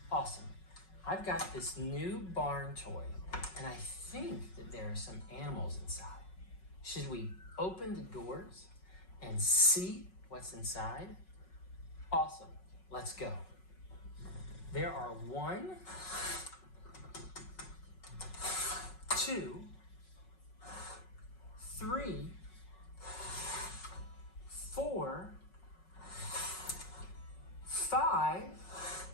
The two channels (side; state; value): right; late; 5.4 ms